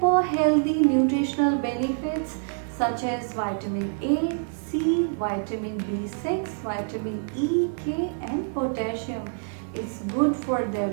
healthy nutritional benefits such as vitamin A, C, vitamin B6, vitamin E, K and potassium. It's good for their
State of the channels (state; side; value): silent; left; 61 dB below the other